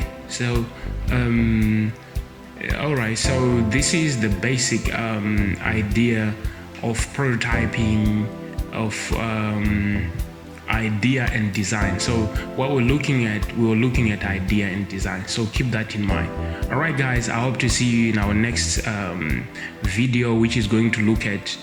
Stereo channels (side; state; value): both; identical; correlation 1.00